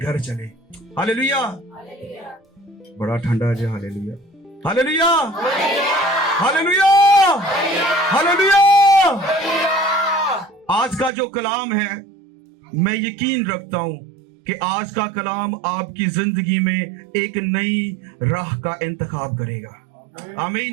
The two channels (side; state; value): left; drops out; at 11.1 s